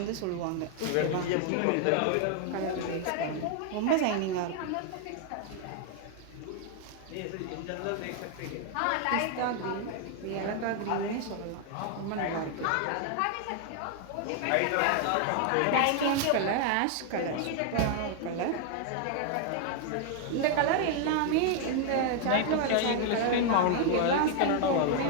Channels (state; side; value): different; both; correlation 0.00